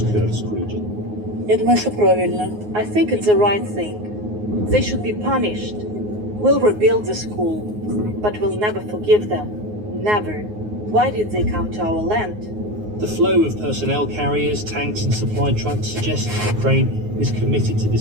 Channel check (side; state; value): left; late; 9.5 ms